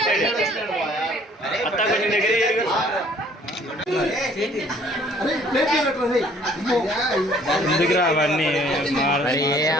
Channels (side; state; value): both; normal; correlation 0.58